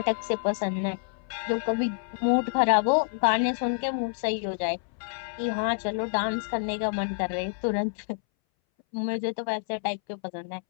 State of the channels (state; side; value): silent; right; 59 dB below the other